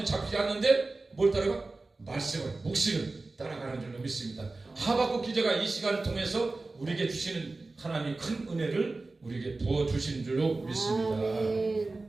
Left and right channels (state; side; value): quieter; left; 3.4 dB